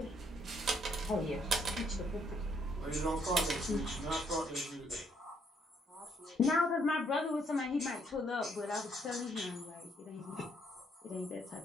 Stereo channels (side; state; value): both; normal; correlation 0.70